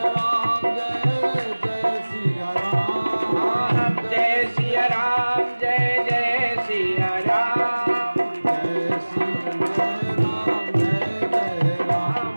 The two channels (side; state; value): both; inverted; correlation -1.00